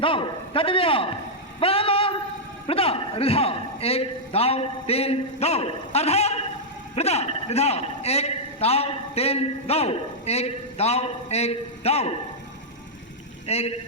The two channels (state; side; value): normal; both; correlation -0.07